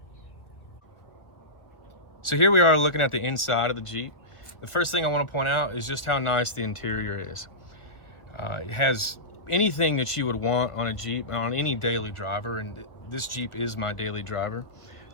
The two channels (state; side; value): late; right; 1.6 ms